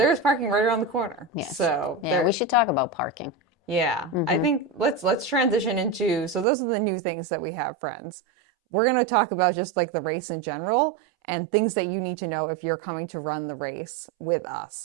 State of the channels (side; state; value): left; drops out; at 6.5 s